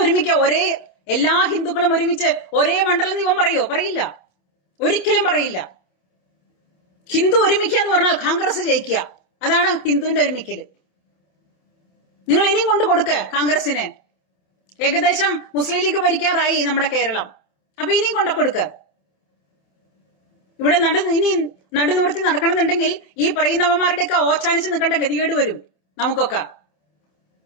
എല്ലാ ഹിന്ദുക്കളും ഒരുമിച്ച് ഒരേ മണ്ഡലം ഇവൻ പറയോ? പറയില്ല, ഒരിക്കലും പറയില്ല. ഹിന്ദു ഒരുമിക്കുക എന്ന് പറഞ്ഞാൽ കോൺഗ്രസ് ജയിക്കുക. അതാണ് ഹിന്ദുവിന്റെ ഒരുമിക്കല്. നിങ്ങൾ ഇനിയും കൊണ്ടു കൊടുക്ക കോൺഗ്രസിന്. ഏകദേശം മുസ്ലിം ലീഗ് ഭരിക്കാറായി നമ്മുടെ കേരളം. അപ്പൊ ഇനിയും കൊണ്ടു കൊടുക്ക. ഇവിടെ ഇനി നടുനിവർത്തി നടക്കണമെന്നുണ്ടെങ്കിൽ ഈ പറയുന്നവന്മാരുടെയൊക്കെ ഓച്ചാനിച്ച് നിൽക്കേണ്ട ഗതികേട് വരും നമുക്കൊക്കെ.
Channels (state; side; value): late; right; 27 ms